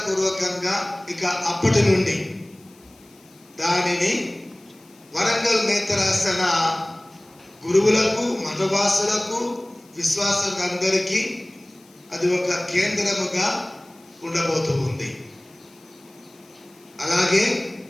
ఇక అప్పటి నుండి దానిని వరంగల్ నేత్రాసన గురువులకు, మఠవాసులకు, విశ్వాసులందరికీ అది ఒక కేంద్రముగా ఉండబోతూ ఉంది. అలాగే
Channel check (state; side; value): noise; left; hiss, 28 dB below the sound